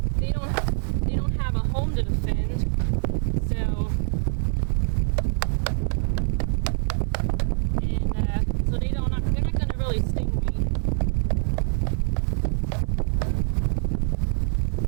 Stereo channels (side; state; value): left; silent; digital silence